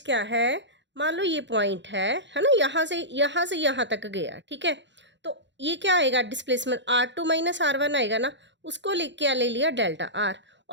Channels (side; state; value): left; late; 0.52 ms